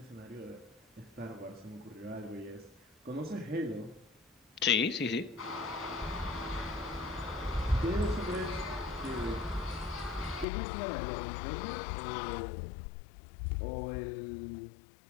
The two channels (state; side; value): drops out; right; at 10.5 s